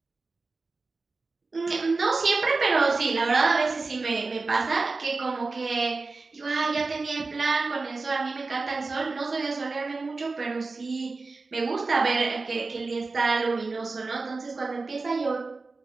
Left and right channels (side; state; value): left; quieter; 3.8 dB